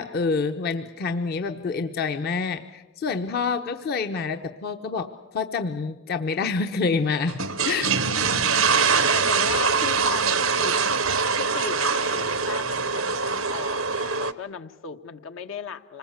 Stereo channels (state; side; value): normal; both; correlation 0.02